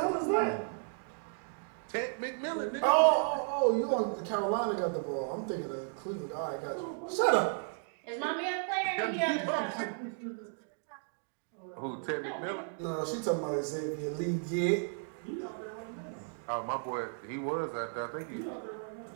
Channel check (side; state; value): left; silent; 55 dB below the other